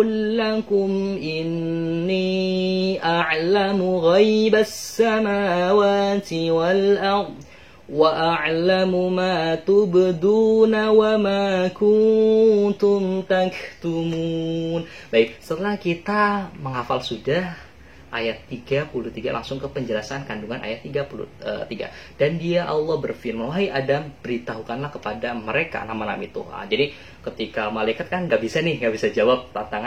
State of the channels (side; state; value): both; identical; correlation 1.00